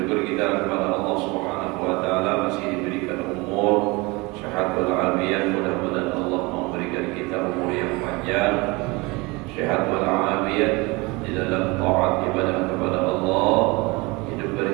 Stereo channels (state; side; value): quieter; left; 24.7 dB